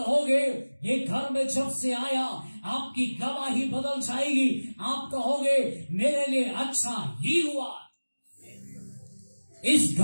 ये घर में जब से आया आपकी गवाही बदल जाएगी। आप कहोगे, मेरे लिए अच्छा ही हुआ, इस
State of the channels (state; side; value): inverted; both; correlation -1.00